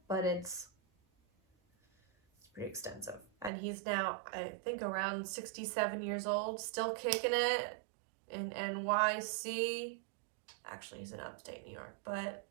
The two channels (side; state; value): left; drops out; at 3.5 s